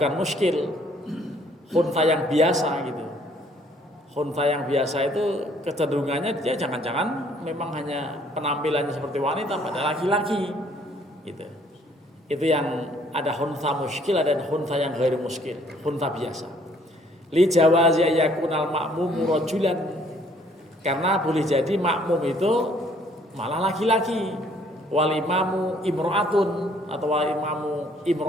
muskil. Khunsa yang biasa gitu. Khunsa yang biasa itu kecenderungannya dia jangan-jangan memang hanya penampilannya seperti wanita pada laki-laki gitu. Itu yang ada khunsa muskil, ada khunsa yang ghairu muskil, khunsa biasa. Li jawazi yakunal makmum rajulan, karena boleh jadi makmum itu malah laki-laki, wal imamu imro'atun atau wal imamu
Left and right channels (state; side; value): normal; both; correlation 0.62